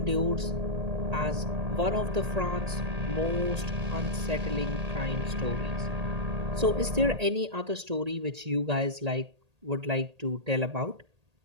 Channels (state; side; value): late; left; 1.8 ms